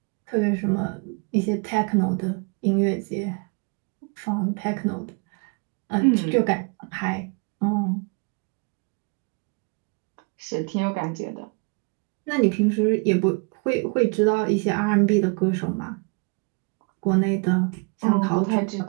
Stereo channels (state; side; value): quieter; left; 34.0 dB